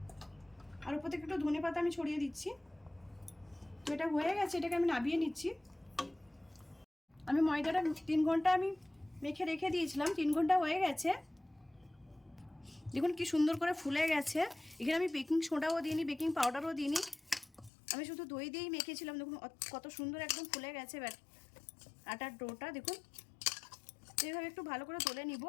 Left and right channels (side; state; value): right; drops out; at 17.7 s